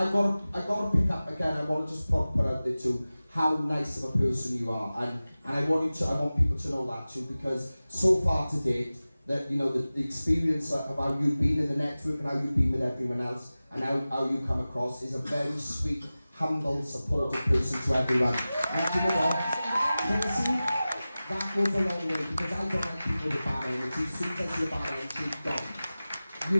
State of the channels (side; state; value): both; inverted; correlation -0.97